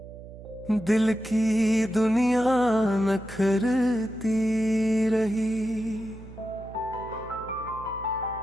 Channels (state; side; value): noise; right; hum, 16 dB below the sound